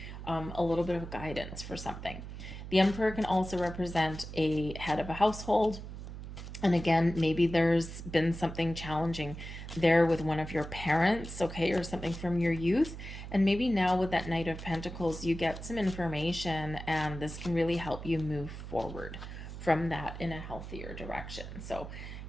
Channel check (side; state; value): right; noise; hum, 10 dB below the sound